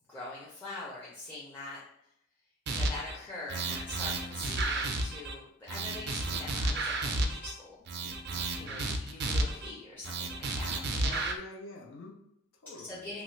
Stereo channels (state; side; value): normal; both; correlation 0.50